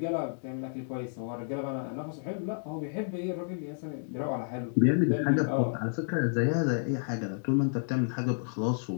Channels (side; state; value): right; silent; digital silence